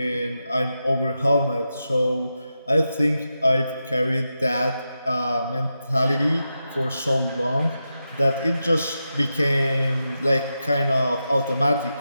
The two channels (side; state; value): both; inverted; correlation -0.89